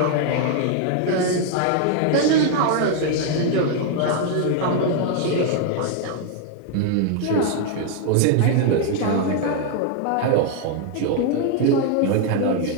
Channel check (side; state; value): both; different; correlation 0.00